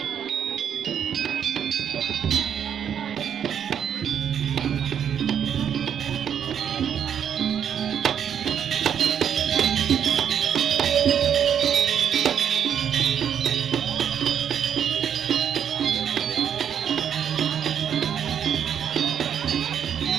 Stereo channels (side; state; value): left; quieter; 8.6 dB